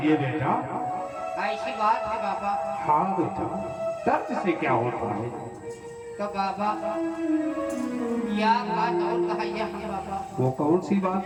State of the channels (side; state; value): both; identical; correlation 1.00